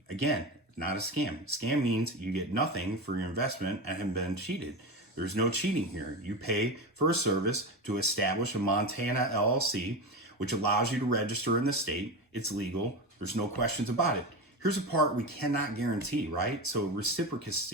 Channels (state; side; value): normal; both; correlation 0.22